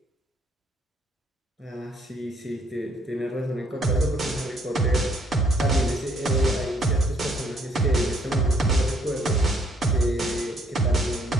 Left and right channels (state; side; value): normal; both; correlation 0.66